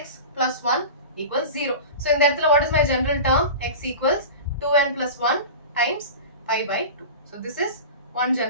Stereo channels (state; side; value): inverted; both; correlation -0.32